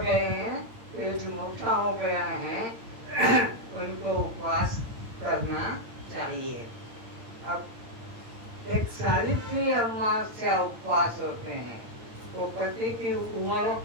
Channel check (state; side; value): late; left; 8.9 ms